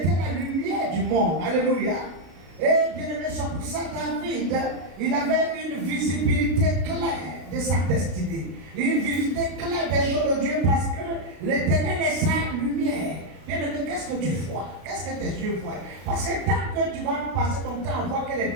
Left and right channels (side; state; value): left; late; 33 ms